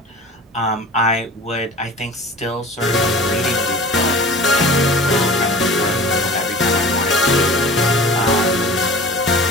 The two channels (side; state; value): both; normal; correlation 0.40